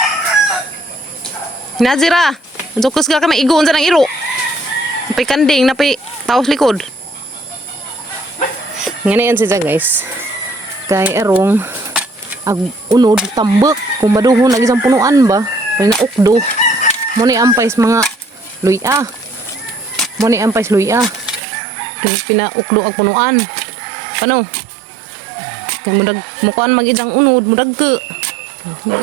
Nazira. Jokus ka kami igoon sa ng iro. Napay kanding, napay taos likod. Ngayon siya guys. Kay erong ag unod tambak kung maduhon lagi sa punuan ba. Kay na ukdo. Mo ni ampais mga luya. Mo ni ampais luya. Pinaukdo ang punuan. Ano? Kung mudag mukuan magidang unod, mudag ke.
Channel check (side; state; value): left; drops out; at 21.4 s